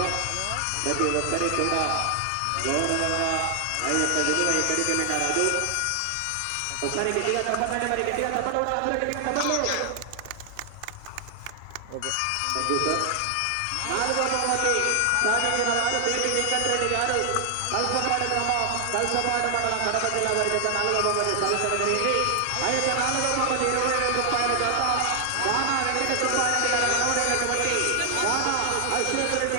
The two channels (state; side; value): different; both; correlation 0.00